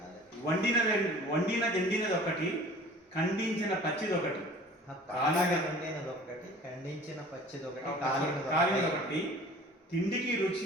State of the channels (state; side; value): normal; both; correlation 0.46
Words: వండినది ఎండినది ఒకటి, ఖండించిన పచ్చిది ఒకటి, ఖండించిన పచ్చిది ఒకటి, తిండికి రుచి